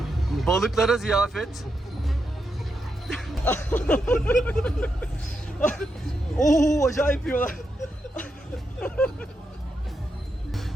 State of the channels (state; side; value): normal; both; correlation 0.84